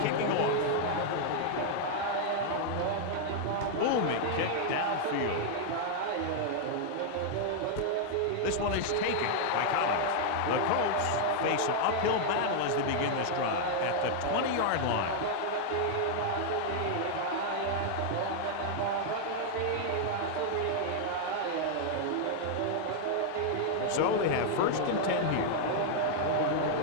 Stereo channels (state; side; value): different; both; correlation -0.01